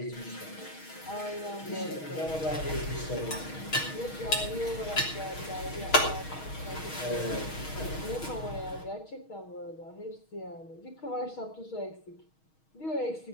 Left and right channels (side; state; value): right; late; 6.3 ms